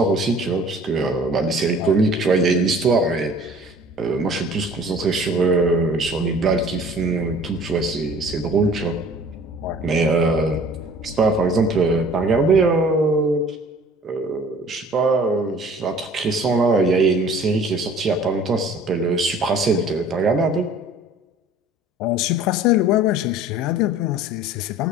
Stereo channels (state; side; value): normal; both; correlation 0.49